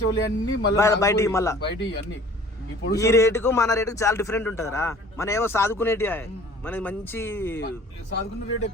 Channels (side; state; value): both; normal; correlation 0.50